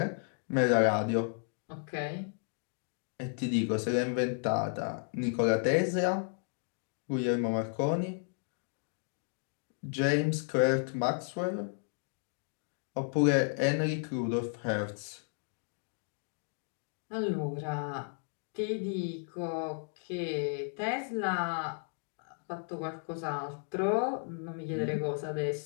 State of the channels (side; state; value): right; silent; 55 dB below the other